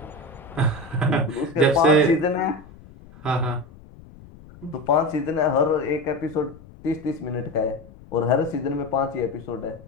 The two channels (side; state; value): left; noise; rumble, 21 dB below the sound